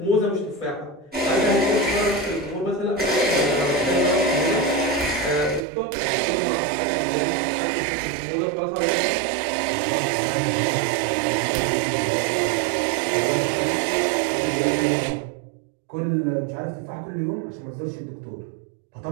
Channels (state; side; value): drops out; left; at 5.7 s